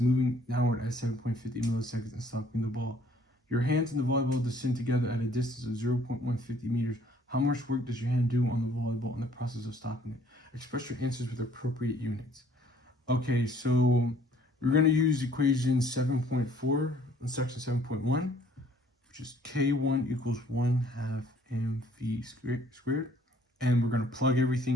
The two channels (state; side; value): normal; both; correlation 0.60